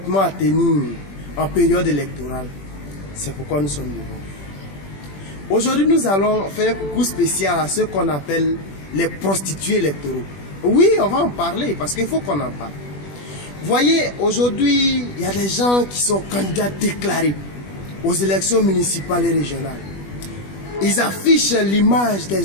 à tenir en période électorale. C'est pourquoi nous sommes devant. Aujourd'hui, nous allons faire un coucou spécial à ceux qu'on appelle les prostituées électoraux. Oui, on va en parler parce qu'il faut qu'on en parle. Voyez, aujourd'hui, il y a des gens qui sont candidats déclarés aux élections municipales et régionales. Ils affichent l'image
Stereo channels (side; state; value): right; late; 21 ms